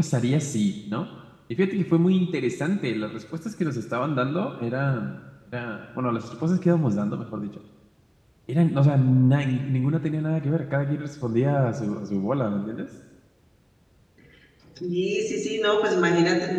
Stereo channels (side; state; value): both; identical; correlation 1.00